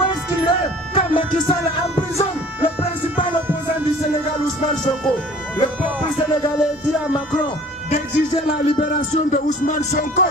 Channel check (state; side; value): normal; both; correlation 0.49